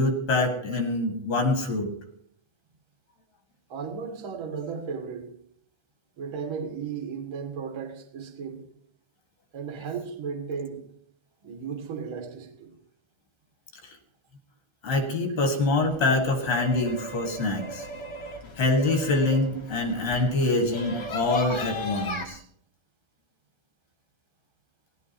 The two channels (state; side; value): late; left; 1.3 ms